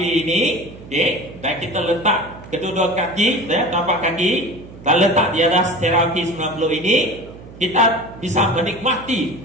ini, okay, dan kita letak kedua-dua kaki, ya, tapak kaki, dan letak di atas terapi 90 ini, kita bisa menikmati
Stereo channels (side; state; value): right; noise; hum, 17 dB below the sound